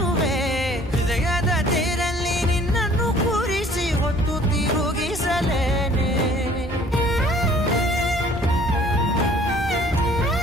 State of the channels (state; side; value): normal; both; correlation 0.54